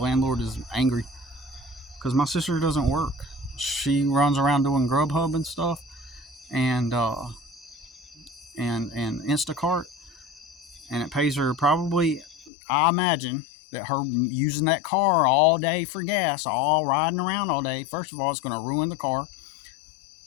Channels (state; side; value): drops out; right; at 12.5 s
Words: is angry because my sister doesn't work. She runs around doing Grubhub and stuff, and Instacart, and it pays her probably, I imagine, that her using that car all day for gas, all riding around all day, first of all, it's going to ruin the car.